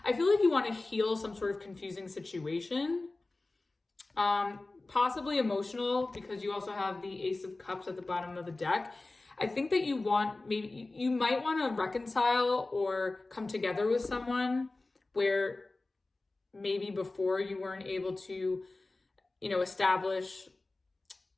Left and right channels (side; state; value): right; quieter; 3.2 dB